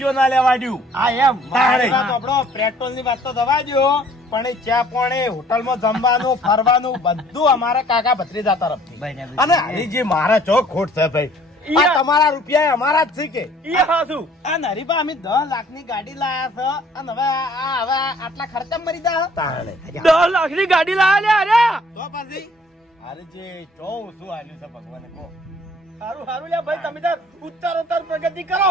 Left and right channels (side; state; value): both; normal; correlation 0.57